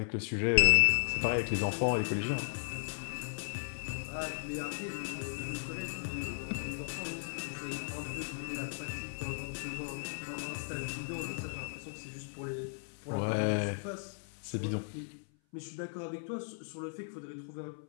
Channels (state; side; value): silent; right; 54 dB below the other